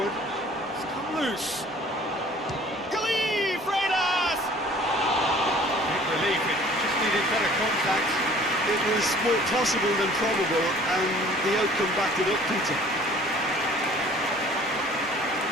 It's come loose. Gali Freitas! Big relief, it just needed better contact. It was more possible than probable, and the outcome backed it up, Peter.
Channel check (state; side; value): normal; both; correlation 0.51